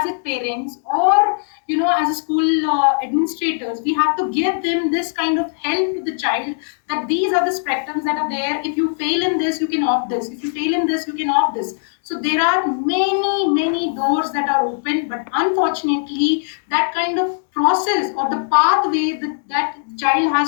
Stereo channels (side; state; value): right; silent; 66 dB below the other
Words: a parents, or as a school administrators, we have to give them this kind of help to the child, that these are the spectrums that are there. If you fail in this, you can opt this. If you fail in this, you can opt this. So there are many doors that are open, but unfortunately that kind of process or the pathway that child